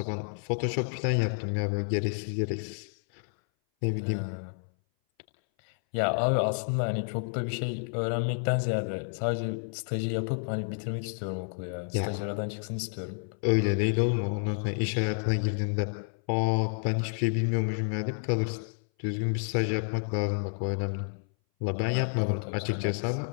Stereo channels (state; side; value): silent; right; 58 dB below the other